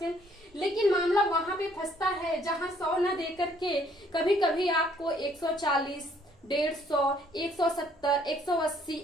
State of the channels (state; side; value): normal; both; correlation 0.63